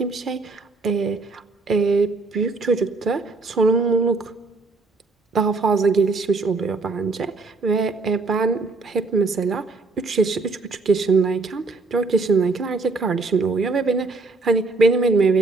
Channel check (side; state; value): left; quieter; 3.7 dB